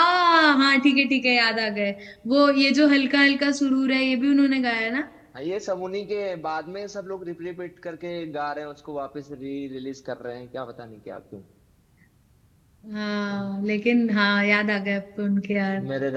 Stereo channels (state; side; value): identical; both; correlation 1.00